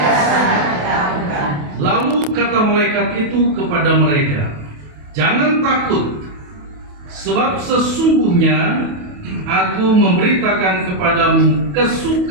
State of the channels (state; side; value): late; left; 28 ms